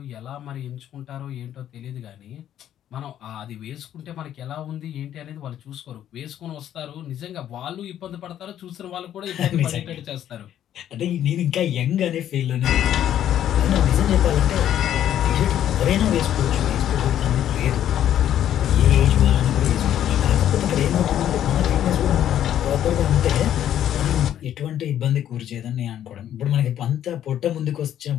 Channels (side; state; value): right; quieter; 10.9 dB